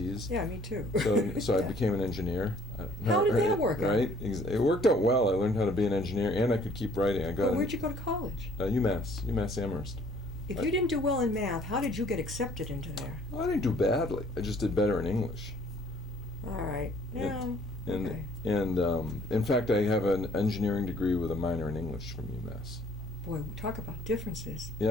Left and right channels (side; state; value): both; normal; correlation 0.59